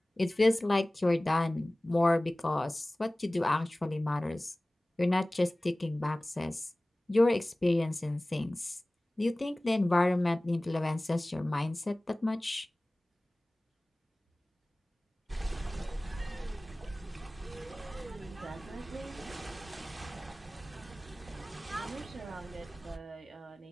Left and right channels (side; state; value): both; normal; correlation 0.98